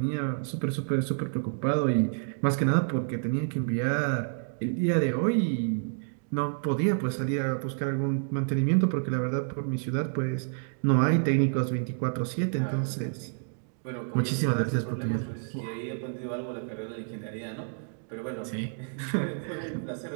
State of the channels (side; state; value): left; silent; digital silence